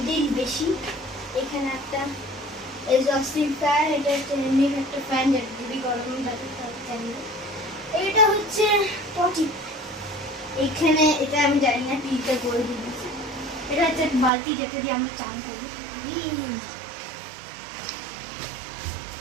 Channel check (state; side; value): drops out; left; at 14.3 s